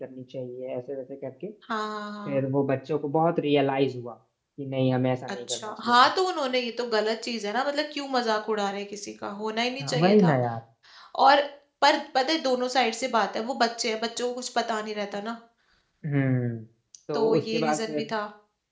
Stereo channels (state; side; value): identical; both; correlation 1.00